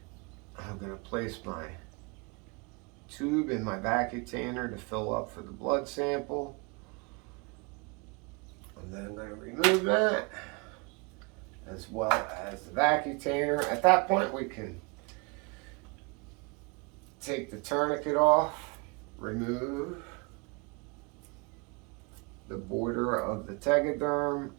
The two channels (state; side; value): quieter; left; 30.4 dB